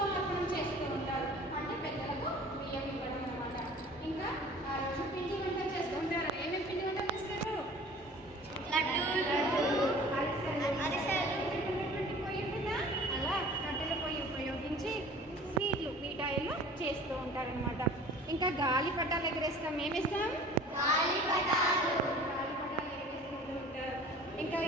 చేస్తూ ఉంటారు. అంటే పెద్దలకు బియ్యం ఇవ్వడం అన్నమాట. ఇంకా ఆ రోజు పిండి వంటలు చేస్తూ ఉంటారు. ఏమేమి పిండి వంటలు చేస్తారు? అరిసెలు, పొయ్యి మీద అలా కట్టెల పొయ్యి ఉపయోగించి స్వీట్లు, మిఠాయిలు చేస్తూ ఉంటారనమాట. ఇంకా గాలి పటాలు ఎగరేస్తాం. ఏమిస్తాం? గాలిపటాలు ఎగరేసుకుంటూ ఉంటారు. ఇంకా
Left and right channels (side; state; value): both; normal; correlation 0.45